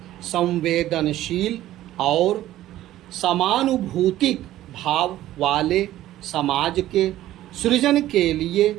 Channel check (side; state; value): left; quieter; 14.1 dB